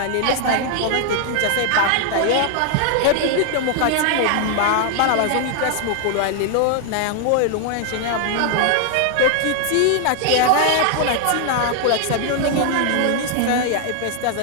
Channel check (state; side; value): different; both; correlation 0.00